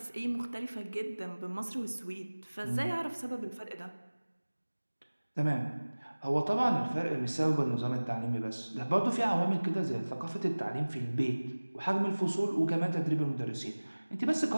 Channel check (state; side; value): inverted; both; correlation -1.00